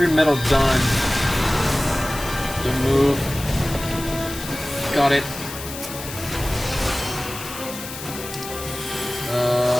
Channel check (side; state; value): left; noise; hiss, 10 dB below the sound